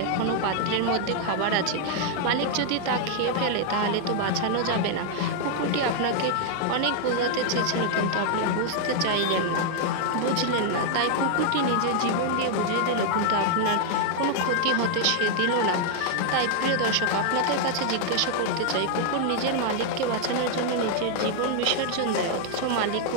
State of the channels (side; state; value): both; different; correlation 0.00